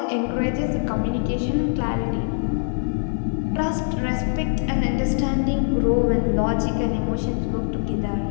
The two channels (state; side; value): silent; right; 57 dB below the other